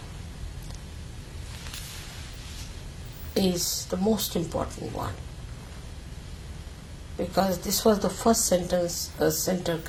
is the most important one, because this was the first center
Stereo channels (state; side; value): identical; both; correlation 1.00